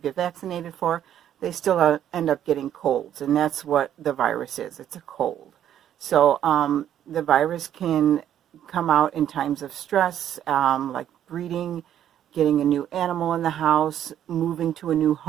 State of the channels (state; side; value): quieter; left; 10.6 dB